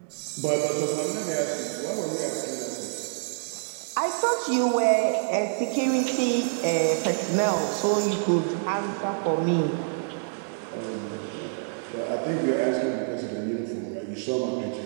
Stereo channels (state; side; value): silent; left; digital silence